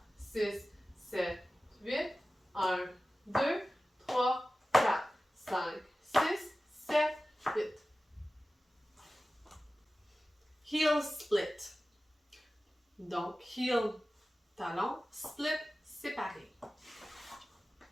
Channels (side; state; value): both; normal; correlation 0.96